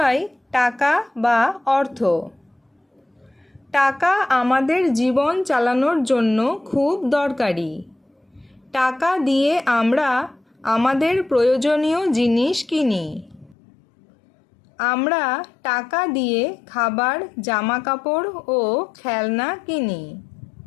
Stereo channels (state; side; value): drops out; right; at 13.6 s